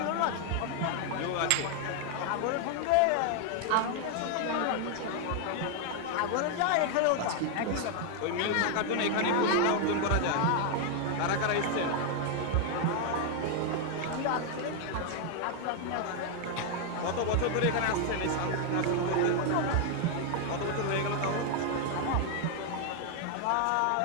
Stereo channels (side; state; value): both; different; correlation 0.00